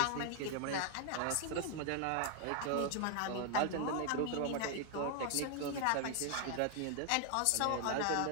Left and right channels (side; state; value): both; different; correlation 0.00